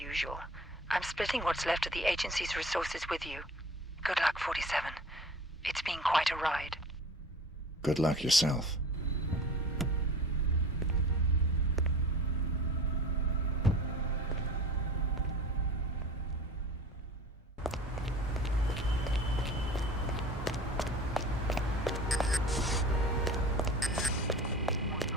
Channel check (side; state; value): both; normal; correlation 0.40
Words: I'm splitting what's left of the agency's resources with you. Good luck, 47. It's been quite a ride. Good luck yourself.